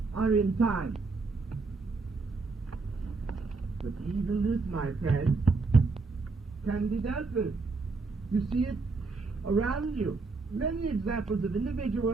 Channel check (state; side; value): quieter; left; 4.0 dB